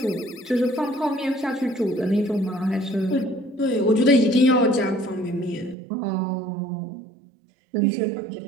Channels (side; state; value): left; drops out; at 5.8 s